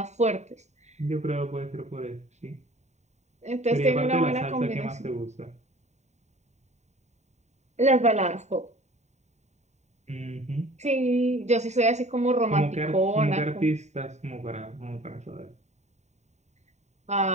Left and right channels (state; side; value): late; left; 0.33 ms